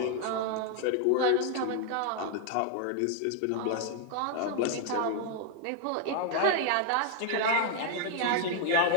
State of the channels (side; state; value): both; different; correlation 0.00